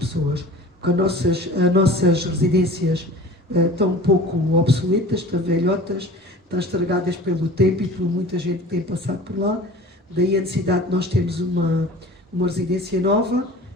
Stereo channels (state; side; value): normal; both; correlation 0.41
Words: porque as nossas residências estão um pouco obsoletas, estão velhotas, estão estragadas pelo tempo e por muita gente que tem passado por lá. Daí a necessidade de nós termos uma residência nova